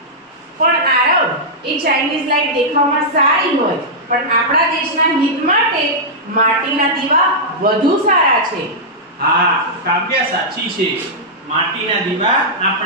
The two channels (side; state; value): both; normal; correlation -0.10